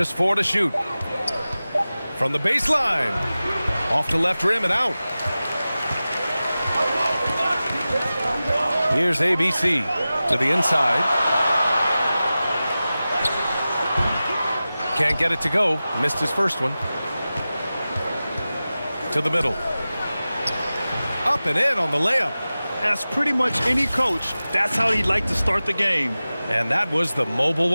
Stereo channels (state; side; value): inverted; both; correlation -0.96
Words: 4 to shoot. From the baseline. Off to left rim and out. Here's ABC to the inside. Can't get it to go. Missed his first one. To the middle. Up and in on the layup. As pretty much any coach, that's how he'd like to start the game. And that was the Mobile